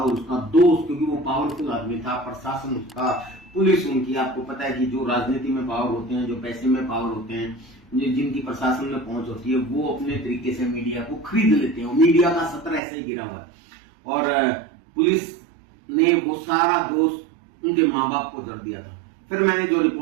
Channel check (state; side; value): drops out; left; at 12.8 s